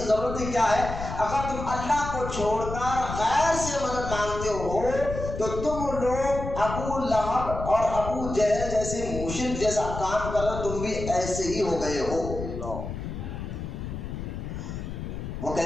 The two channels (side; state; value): left; noise; rumble, 6 dB below the sound